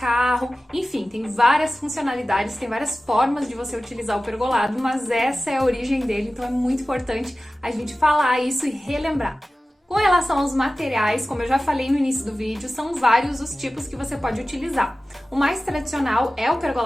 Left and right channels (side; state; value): both; normal; correlation 0.96